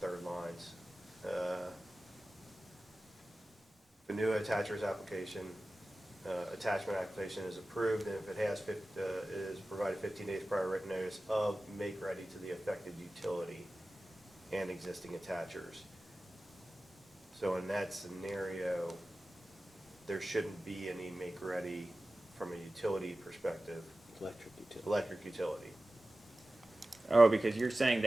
lines. The new attachers application, attachment application is approved, and if it has, is provided 15 days prior written notice of make ready to the affected utility and existing attachers. So in that scenario, there shouldn't be any make ready from a utility perspective, electric utility. Oh, because you're saying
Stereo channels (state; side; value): normal; both; correlation 0.96